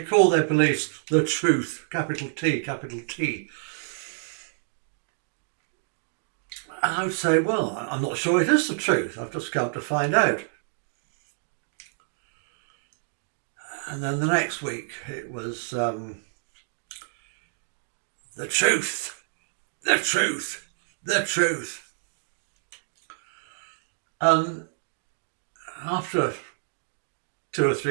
call their beliefs the truth, capital T, capital T. And I would say, well, I'm not sure it is the truth. I've just come to find out. And then the next week it was the truth, the truth, the truth. And after 2 or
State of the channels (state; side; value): silent; left; digital silence